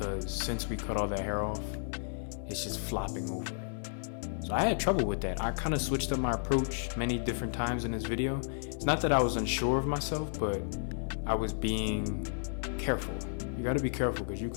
since we cut all that hair off, it's just flopping over. So I had trouble with that. I kind of switched up my approach many different times in this video. It's not that I was unsure of myself, but I was being careful. You got to be careful because you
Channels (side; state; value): right; silent; digital silence